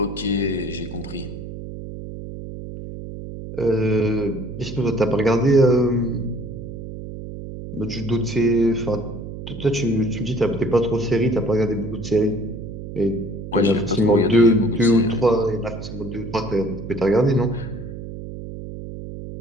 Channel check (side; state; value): right; noise; hum, 10 dB below the sound